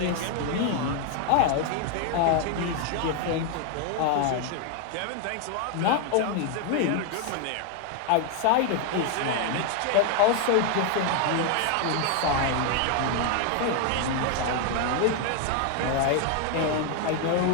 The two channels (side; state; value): both; different; correlation 0.01